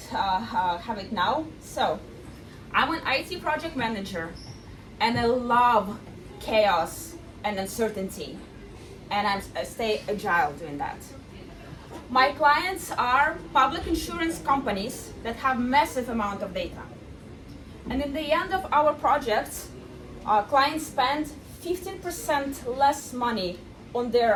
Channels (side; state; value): both; identical; correlation 1.00